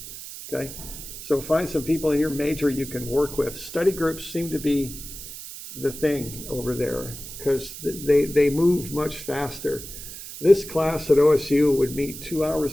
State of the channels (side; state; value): right; noise; hiss, 12 dB below the sound